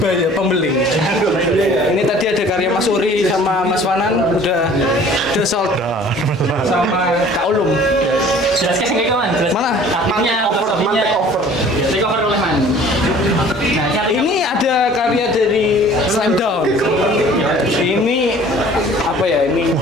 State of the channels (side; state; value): both; normal; correlation 0.50